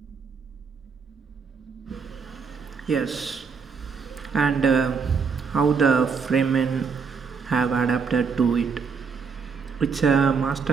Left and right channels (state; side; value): quieter; left; 5.7 dB